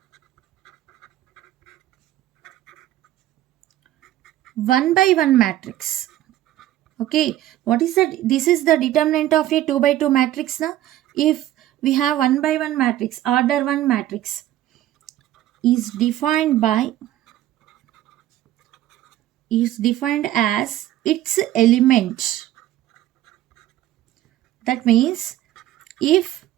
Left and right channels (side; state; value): left; quieter; 13.8 dB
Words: one by one matrix. Okay, what is that? This is the determinant of a 2 by 2 matrix now. If we have 1 by 1 matrix, order 1 matrix is defined as its element. That means if